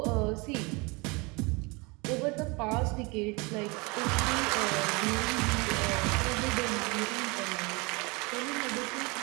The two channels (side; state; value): left; quieter; 27.7 dB